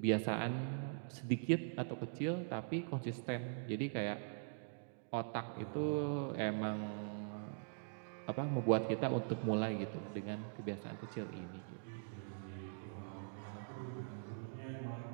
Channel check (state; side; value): silent; left; digital silence